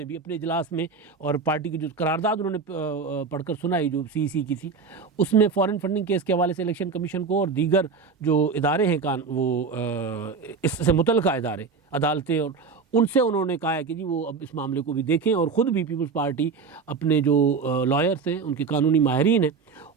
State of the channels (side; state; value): left; quieter; 5.0 dB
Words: भी अपने इजलास में, और पार्टी की जो करारदाद उन्होंने पढ़कर सुनाई जो CEC की थी, उसमें फ़ॉरेन फंडिंग केस के हवाले से इलेक्शन कमीशन को और दीगर जो इदारे हैं इससे मुतल्लिक़ा इदारे, अदालतें, और उनसे उन्होंने कहा है कि जी वो अब इस मामले को भी देखें, और ख़ुद भी पीपल्स पार्टी अपने जो लॉयर्स हैं, उनके कानूनी माहिरीन हैं,